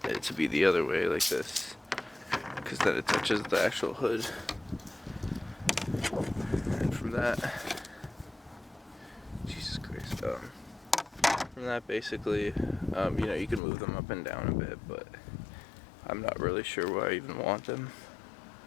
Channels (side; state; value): right; drops out; at 13.6 s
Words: it to be the other way, like this, because then it touches the actual hood. And from that, Jesus Christ, from that basically, you know, you can move them up and down a bit, but I'm not really sure why I even want them.